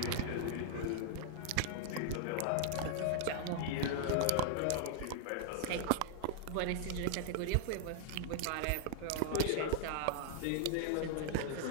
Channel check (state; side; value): different; both; correlation 0.00